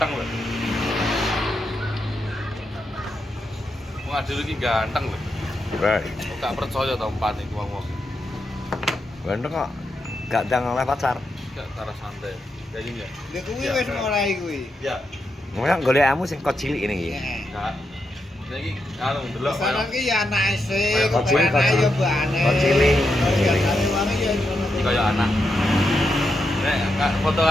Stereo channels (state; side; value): normal; both; correlation 0.84